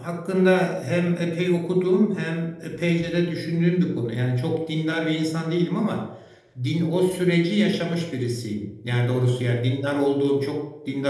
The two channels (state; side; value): identical; both; correlation 1.00